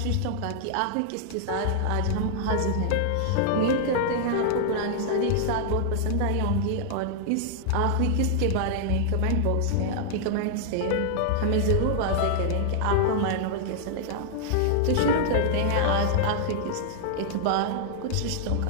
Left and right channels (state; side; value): different; both; correlation -0.01